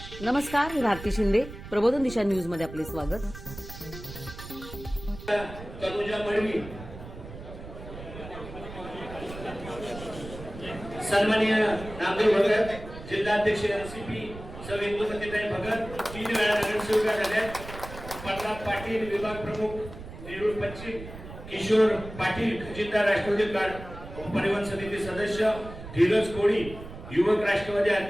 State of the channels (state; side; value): noise; right; rumble, 13 dB below the sound